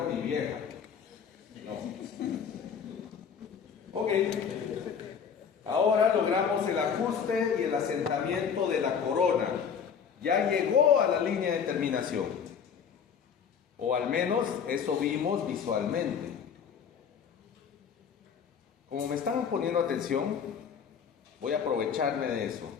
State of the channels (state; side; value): quieter; right; 7.1 dB